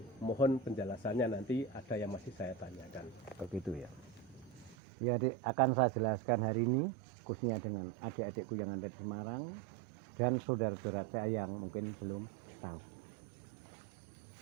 Mohon penjelasannya, nanti ada yang masih saya tanyakan. Begitu ya. Ya adik, akan saya jelaskan hari ini khususnya dengan adik-adikku yang ada di Semarang dan saudara-saudara saya yang mungkin belum tahu.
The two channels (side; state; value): left; drops out; at 4.8 s